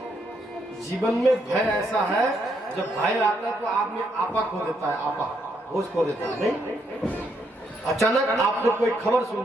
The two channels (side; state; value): both; normal; correlation 0.75